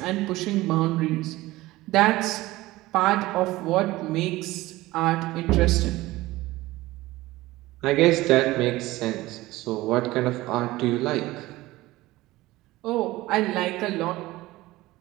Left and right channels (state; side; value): quieter; left; 18.4 dB